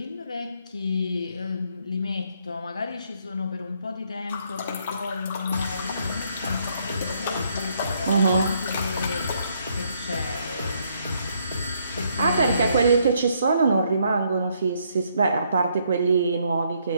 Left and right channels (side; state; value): both; inverted; correlation -0.71